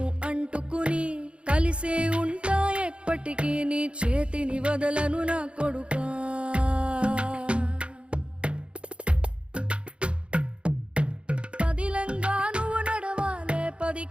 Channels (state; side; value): late; left; 0.058 ms